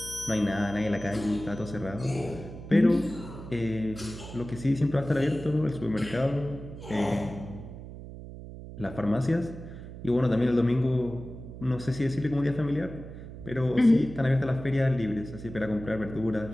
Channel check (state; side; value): noise; right; hum, 12 dB below the sound